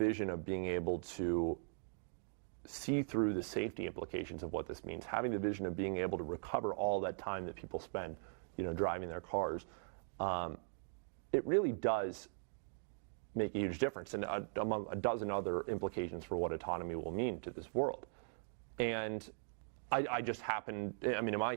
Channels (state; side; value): silent; left; digital silence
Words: of being able to see through the safety implications of what this means, having the vision of being able to recover all that time that people spend, driving their cars, it really does make a huge difference, and among a dozen other implications for what autonomy will mean to this world. And I just happen, in my